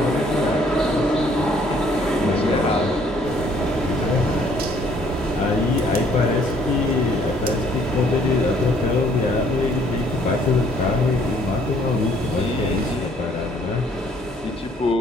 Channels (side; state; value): both; normal; correlation 0.62